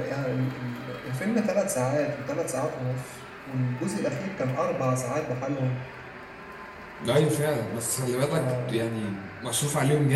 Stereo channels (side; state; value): both; identical; correlation 1.00